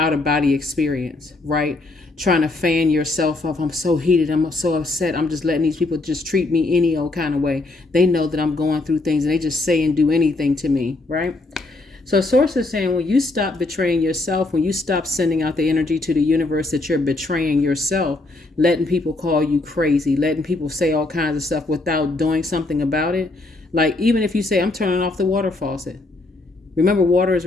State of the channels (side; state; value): right; quieter; 3.0 dB